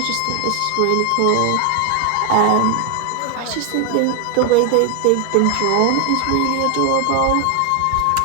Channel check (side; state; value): both; different; correlation 0.01